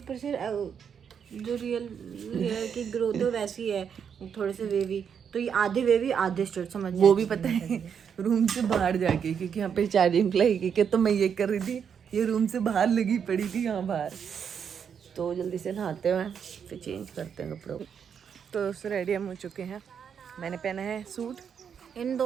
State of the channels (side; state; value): left; quieter; 7.4 dB